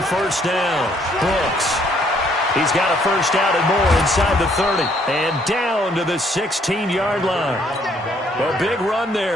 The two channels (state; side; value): normal; both; correlation 0.66